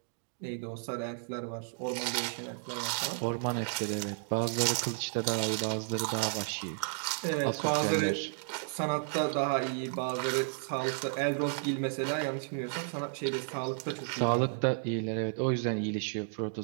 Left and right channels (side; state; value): left; silent; digital silence